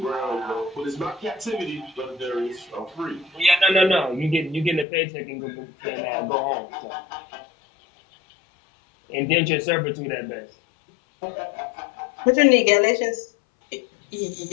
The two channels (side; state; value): right; drops out; at 4.9 s